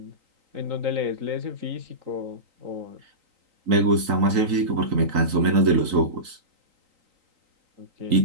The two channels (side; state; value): left; late; 3.9 ms